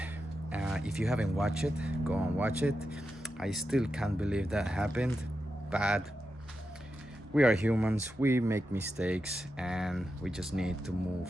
If you haven't watched it, go and watch it. I still can't believe that happened, but we are humans, we make mistakes, and we just need to move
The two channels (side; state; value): both; normal; correlation 0.89